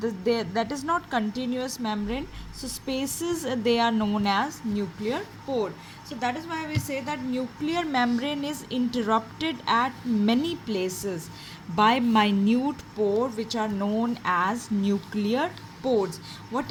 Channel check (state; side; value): identical; both; correlation 1.00